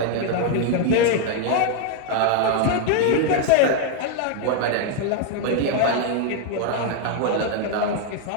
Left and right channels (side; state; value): both; different; correlation 0.01